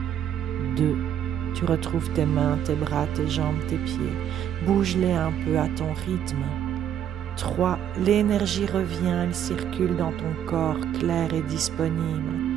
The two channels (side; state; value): left; quieter; 9.8 dB